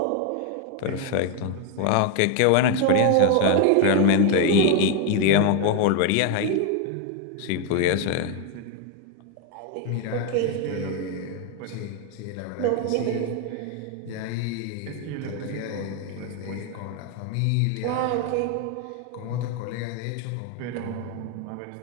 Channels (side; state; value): both; different; correlation 0.01